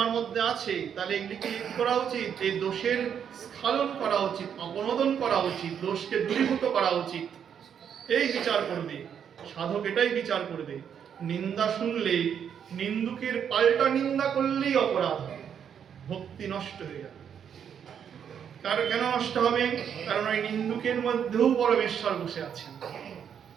মধ্যে আছে, তাহলে এগুলিকে কি করা উচিত? এই দোষের স্খলন করা উচিত, অপনোদন করা উচিত, দোষকে দূরীভূত করা উচিত। এই বিচার করবে সাধক, এটাই বিচার করবে। নিন্দা শুনলে নিন্দুকের পাল্টা নিন্দা করলেই অপরাধ হবে, ভক্তি নষ্ট হয়ে যাবে। কেন নষ্ট হবে? কারণ ওই নিন্দুকের মধ্যেও পরমেশ্বর বসে আছেন।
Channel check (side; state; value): left; quieter; 8.2 dB